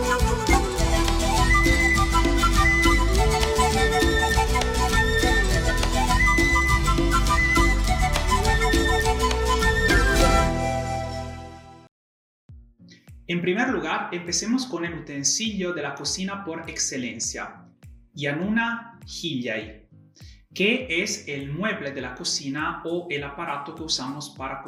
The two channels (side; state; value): both; identical; correlation 1.00